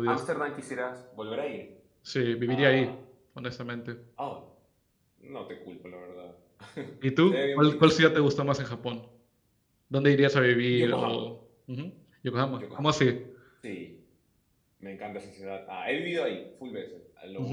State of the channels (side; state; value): both; identical; correlation 1.00